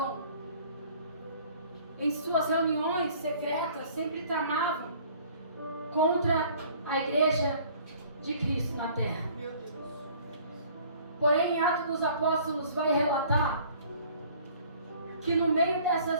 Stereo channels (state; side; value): inverted; both; correlation -0.53